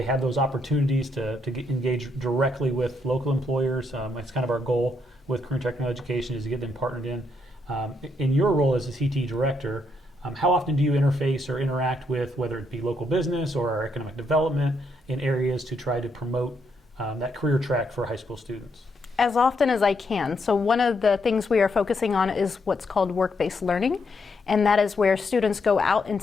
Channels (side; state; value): both; normal; correlation 0.77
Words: have those opportunities to engage directly with local employers. It's kind of our goal with career and technical education, is to get them partnered in. In your role as a CTE Director, how often do you interface or interact with, whether it be local business or our economic development, in areas to try to promote that career track for high school students? As often as I can. So one of the things we are focusing on is what's called work-based learning, and that is where students go out